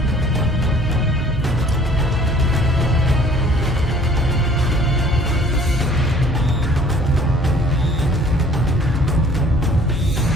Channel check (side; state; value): both; normal; correlation 0.54